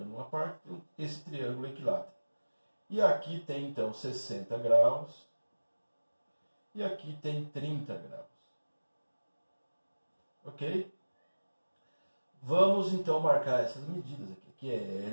uma parte, esse triângulo equilátero. E aqui tem então 60 graus, e aqui tem 30 graus. Ok? Vamos então marcar essas medidas aqui. Aqui é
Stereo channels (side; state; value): both; inverted; correlation -1.00